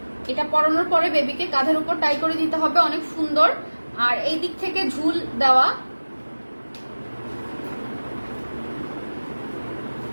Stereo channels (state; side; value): inverted; both; correlation -1.00